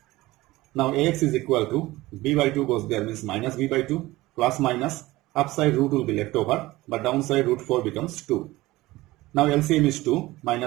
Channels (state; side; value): quieter; left; 18.8 dB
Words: Now ax is equal to b by 2 goes there means minus b by 2, plus minus, upside root will be left over, but downside root 4 becomes 2. Now LCM is 2